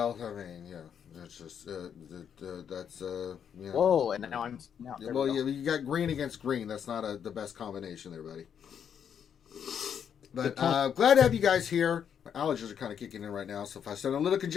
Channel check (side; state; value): right; quieter; 8.2 dB